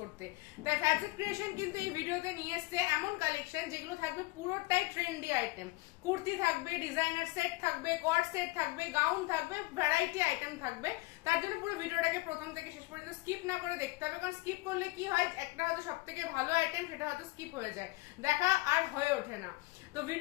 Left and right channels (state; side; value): quieter; right; 22.0 dB